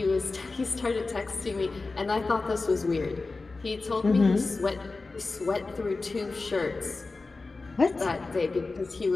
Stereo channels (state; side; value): quieter; right; 3.7 dB